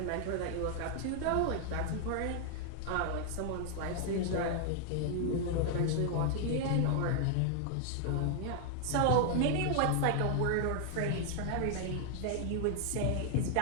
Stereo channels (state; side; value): different; both; correlation 0.00